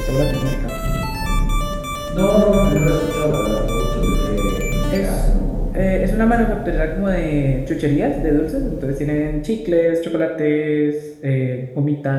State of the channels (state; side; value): identical; both; correlation 1.00